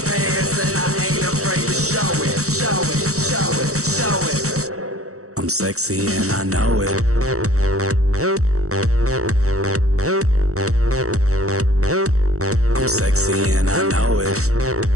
pants and I ain't afraid to show it, show it, show it, show it. I'm sexy and I know it. I'm sexy and I know it.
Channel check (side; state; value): left; late; 0.65 ms